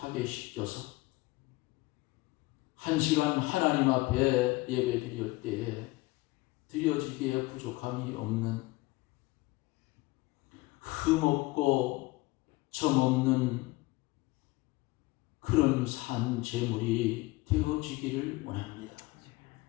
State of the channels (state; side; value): quieter; right; 21.4 dB